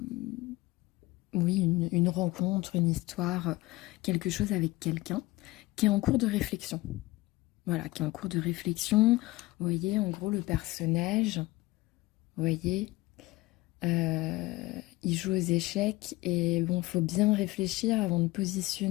oui, une rencontre, une histoire, quelque chose avec quelqu'un qui est en cours de réflexion. Voilà, qui est en cours de réflexion. Vous voyez, en gros, le personnage, vous voyez, il joue aux échecs et bon, faut bien réfléchir avant de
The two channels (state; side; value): quieter; right; 20.2 dB